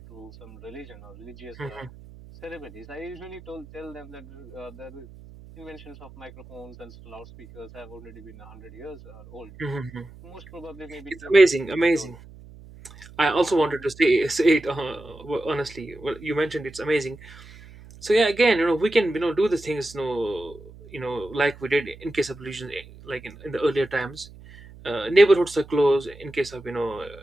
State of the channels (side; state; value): right; noise; hum, 19 dB below the sound